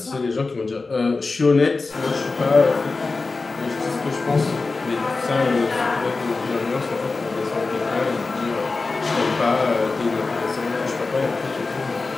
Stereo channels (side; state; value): right; quieter; 3.8 dB